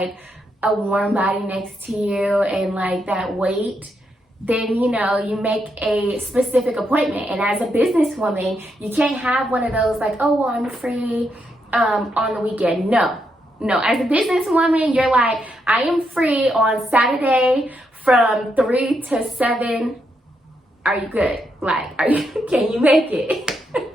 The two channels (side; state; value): both; normal; correlation 0.80